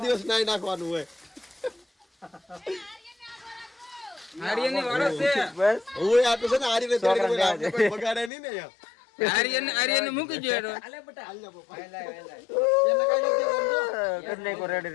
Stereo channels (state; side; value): drops out; right; at 8.3 s